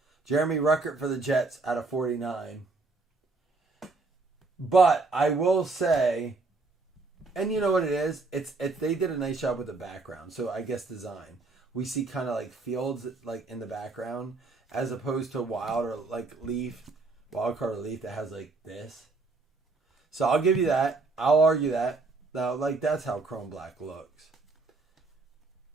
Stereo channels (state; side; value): quieter; left; 3.7 dB